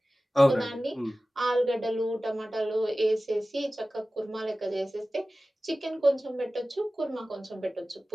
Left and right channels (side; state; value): both; normal; correlation 0.96